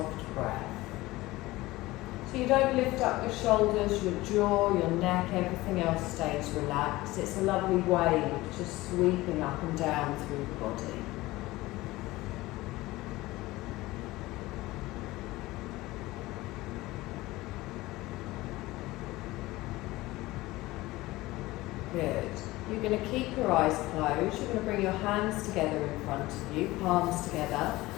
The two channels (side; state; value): right; quieter; 19.0 dB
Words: breath. So you don't lift up your shoulders, your jaw, your neck, everything else stays relaxed. It's a lovely wave just sweeping up and down through the body. Good. You're going to keep your eyes closed. You're going to bring your hands together in front of you, palms together,